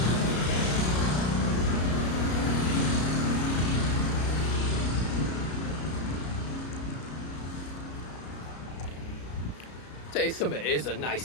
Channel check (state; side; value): late; right; 33 ms